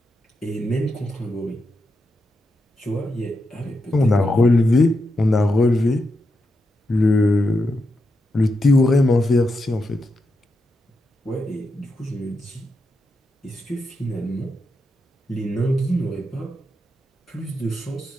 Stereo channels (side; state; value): both; normal; correlation 0.85